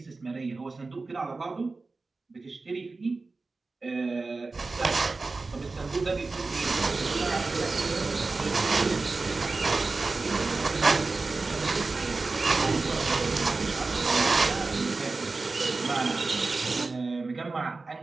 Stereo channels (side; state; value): left; quieter; 3.7 dB